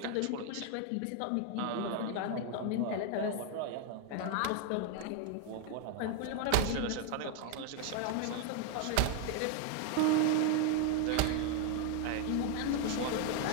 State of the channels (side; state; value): both; different; correlation 0.00